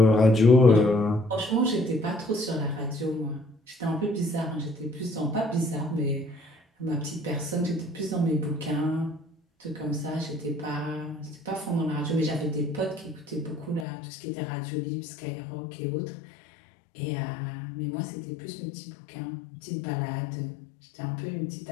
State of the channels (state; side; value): drops out; right; at 13.9 s